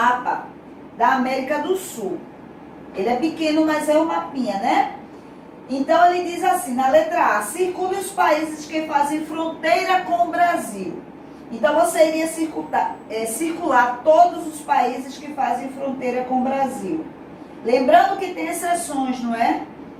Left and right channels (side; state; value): both; identical; correlation 1.00